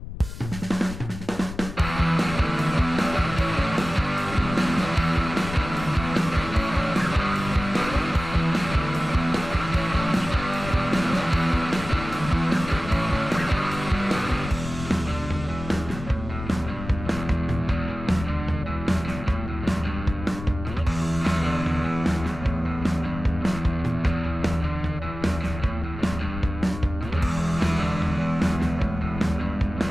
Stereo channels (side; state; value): left; noise; rumble, 10 dB below the sound